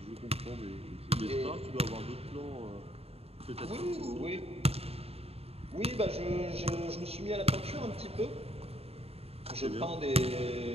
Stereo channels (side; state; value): left; late; 0.29 ms